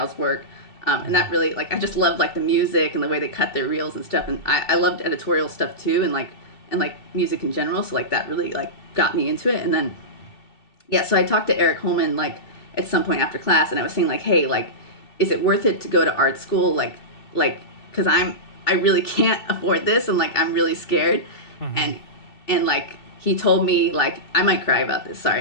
work. And that really, like, I just loved like the music and the way they cut their reels and stuff, and I loved editorial stuff too, and like music in general. So like that really like got me into it. And then so I talked to Eric Holman like at some point after class, and I was saying like, hey, like, is it worth it to go to art school? Like because I really can't afford this, and like I'm really scared. And like he told me, like, I might cry about this,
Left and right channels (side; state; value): right; late; 2.7 ms